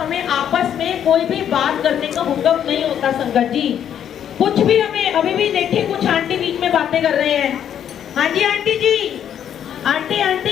आपस में कोई भी बात करने का हुक्म नहीं होता संगत जी। कुछ भी हमें, अभी भी देखिए कुछ आंटी बीच में बातें कर रहे हैं। हाँ जी आंटी जी,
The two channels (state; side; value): quieter; right; 9.4 dB